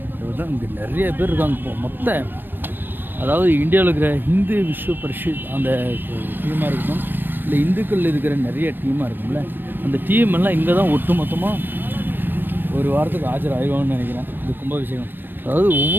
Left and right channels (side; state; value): left; late; 0.094 ms